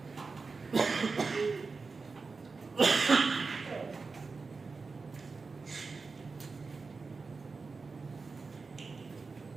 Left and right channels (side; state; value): left; quieter; 4.3 dB